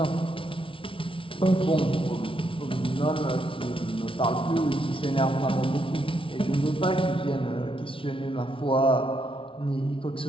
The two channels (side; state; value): right; late; 0.25 ms